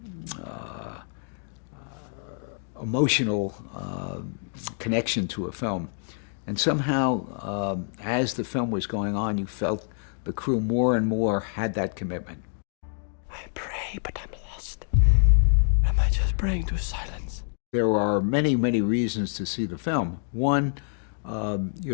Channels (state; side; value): silent; right; digital silence